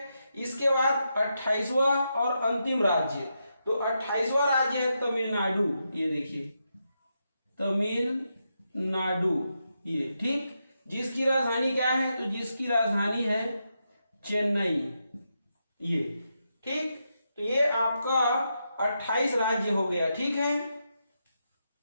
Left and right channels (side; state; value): both; inverted; correlation -0.84